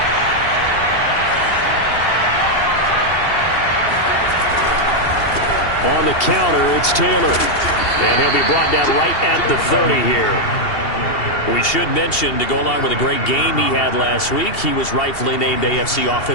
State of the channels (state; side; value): late; right; 2.7 ms